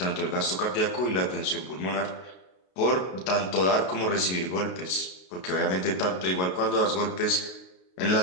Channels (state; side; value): late; right; 32 ms